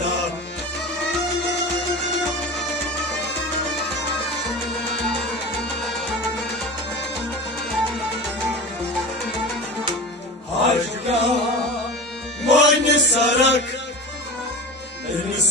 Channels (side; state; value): both; normal; correlation 0.31